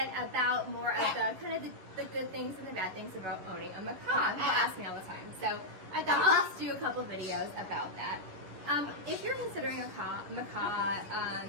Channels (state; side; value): late; left; 11 ms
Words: about more of the kind of the good things and the bad things about owning a macaw. People ask me all the time, so I thought I'll just do a couple videos about that. If you're considering a macaw,